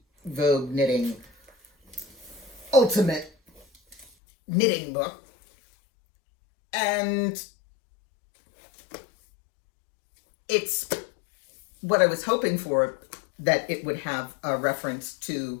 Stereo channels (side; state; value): right; drops out; at 4.1 s